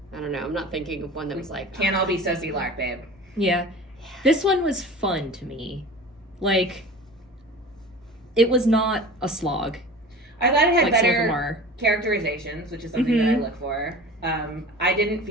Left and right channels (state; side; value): normal; both; correlation 0.37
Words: don't know. I'm not thinking of one that was like... Can't all be Susie Lark, babe. Yeah. This one was fun to me. Like, it was not a slog. I thought it had Like some of them better are. characterizations, which is something that I look for. I didn't